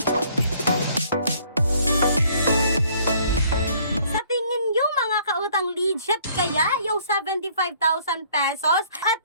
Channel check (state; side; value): inverted; both; correlation -0.60